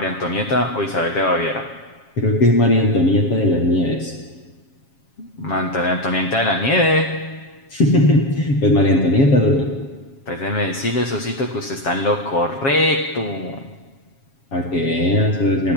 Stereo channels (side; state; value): right; late; 7.4 ms